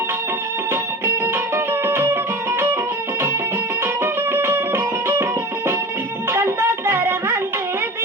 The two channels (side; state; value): both; normal; correlation 0.33